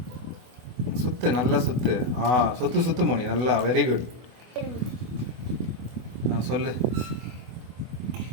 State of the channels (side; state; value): left; late; 24 ms